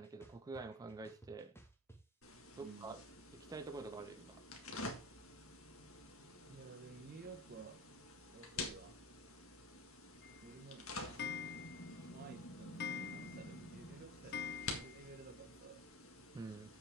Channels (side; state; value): both; normal; correlation 0.31